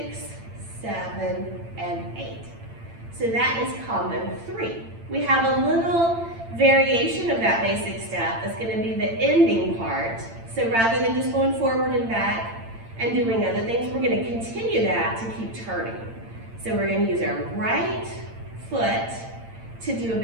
7 and 8. So that is combo 3. We have a little variation of that basic step that's going to be the ending part. So rather than just going forward and back and doing other things, we're going to continue that to keep turning. So we're going to use our right foot to do a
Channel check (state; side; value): late; left; 8.8 ms